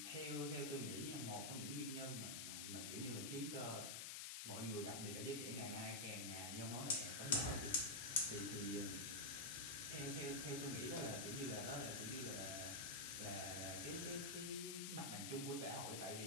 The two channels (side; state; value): left; noise; hiss, 3 dB below the sound